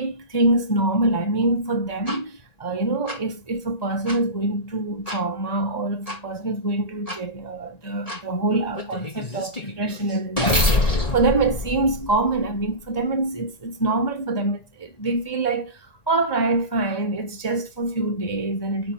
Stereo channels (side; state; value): right; late; 1.9 ms